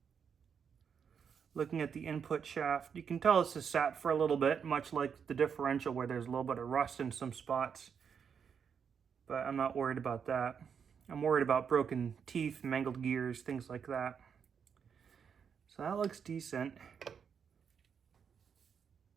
Looking at the input shaft, you can tell this has sat for a little bit, much like the differential where there's a little bit of rust in some spots. But I'm not worried about that. I'm worried about broken teeth, mangled gears, things like that. So that looks decent.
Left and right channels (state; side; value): quieter; left; 7.0 dB